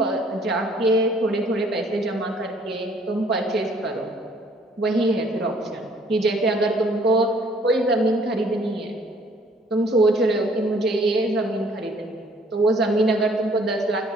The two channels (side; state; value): both; normal; correlation 0.60